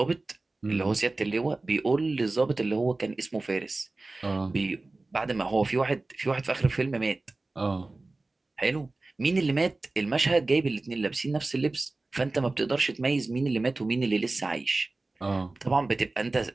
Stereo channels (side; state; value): left; quieter; 3.2 dB